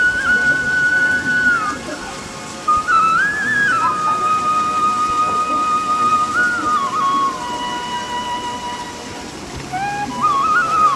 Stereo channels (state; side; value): identical; both; correlation 1.00